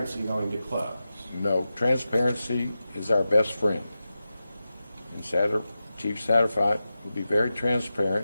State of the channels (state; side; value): inverted; both; correlation -0.92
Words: going to close? no, transparency is our best friend. And Chief Satterwhite will be very transparent,